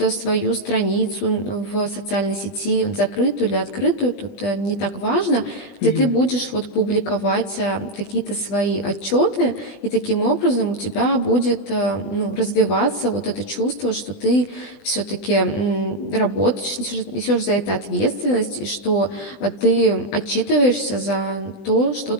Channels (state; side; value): late; right; 20 ms